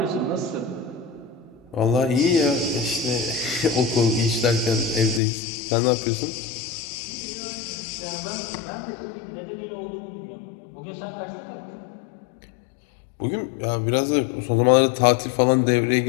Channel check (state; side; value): drops out; right; at 5.2 s